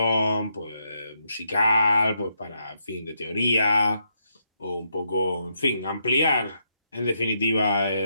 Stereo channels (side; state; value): both; inverted; correlation -0.79